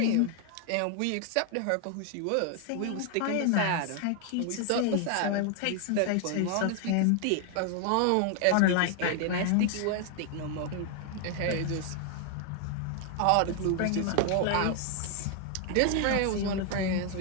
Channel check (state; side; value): different; both; correlation 0.00